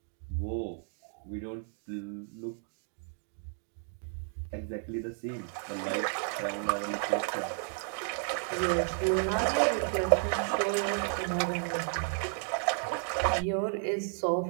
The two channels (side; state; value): left; silent; 56 dB below the other